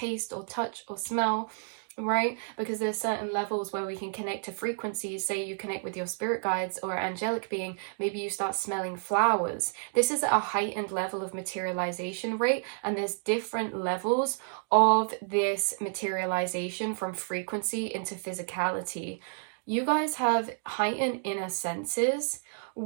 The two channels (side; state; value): left; silent; digital silence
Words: or touch or smell, right? Because there's certain levels where we can connect to frequencies. Say you connect with your spirit guides or angelic being, maybe you start smelling flowers. This is a heightened level of materialization rate, and there's different levels of this materialization from frequency into physicality. You guys have heightened inner senses,